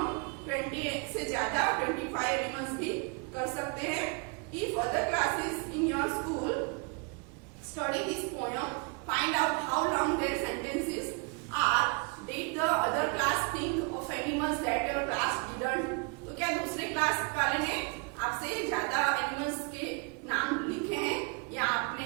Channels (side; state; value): left; quieter; 33.7 dB